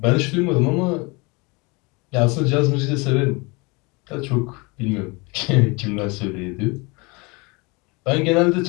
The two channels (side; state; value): right; quieter; 27.6 dB